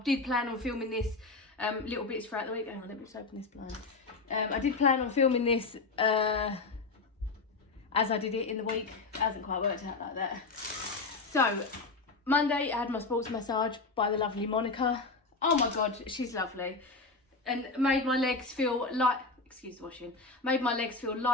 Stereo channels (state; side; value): quieter; right; 3.9 dB